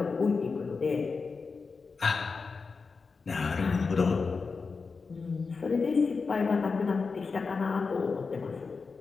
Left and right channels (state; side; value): quieter; right; 4.7 dB